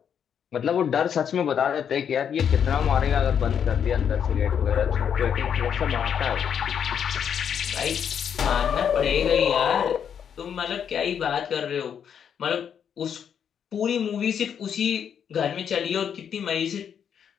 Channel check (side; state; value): right; quieter; 8.1 dB